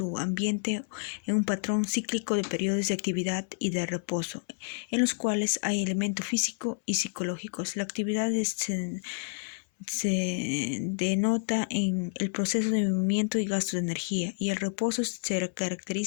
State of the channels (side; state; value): right; silent; 58 dB below the other